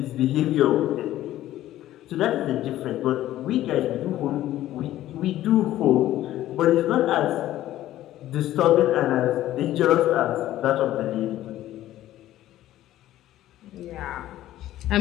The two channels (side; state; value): right; quieter; 13.9 dB